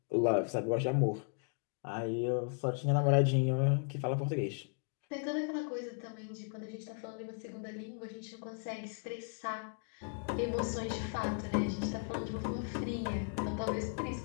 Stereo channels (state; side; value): silent; right; 54 dB below the other